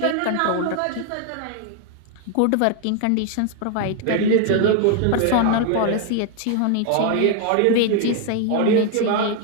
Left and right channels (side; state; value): both; different; correlation 0.00